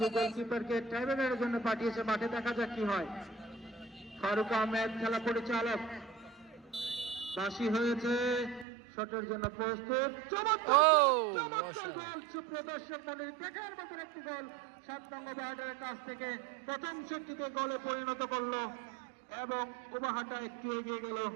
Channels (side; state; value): left; drops out; at 8.7 s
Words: গোলকিপারকে ট্রাইব্রেনের জন্য পাঠিয়েছে। মাঠে দেখা যাক কি হয়। ফারুক আহমেদ খেলা পরিচালক, বাসি হয়েছে, শটের জন্য প্রস্তুত। প্রদর্শন মনির দেখার মতন একটি গোল 7 নং বাহাটার কাছ থেকে প্রথম শক্তিতে গোলে পরিণত করলো এবং উবাহাটা একটু এগিয়ে গেল।